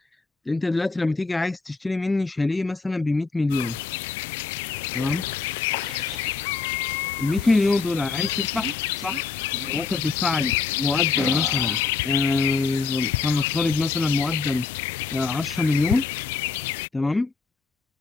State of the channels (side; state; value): right; quieter; 4.6 dB